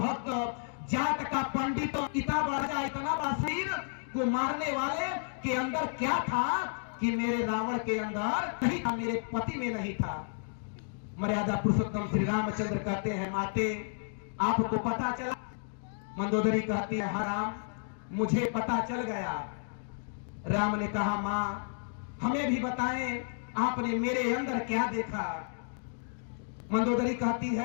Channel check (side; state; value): right; silent; digital silence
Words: जाट का पंडित, इतना बड़ा शरीर को मारने वाले के अंदर क्या था कि मेरे रावण के अंदर नहीं था, मेरे पति में नहीं था। मर्यादा पुरुषोत्तम श्री रामचंद्र कहते हैं, माते, आपको पता चला? मंदोदरी कहती है, हाँ राम, मुझे पता चल गया। राम ने कहा, मां, हमें भी बताएं, आपने मेरे अंदर क्या देखा? मंदोदरी कहती